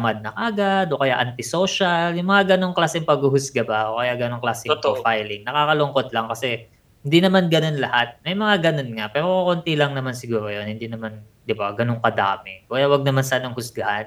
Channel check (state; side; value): identical; both; correlation 1.00